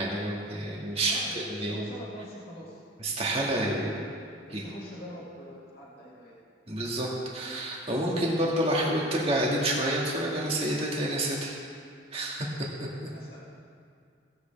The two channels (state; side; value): normal; both; correlation 0.39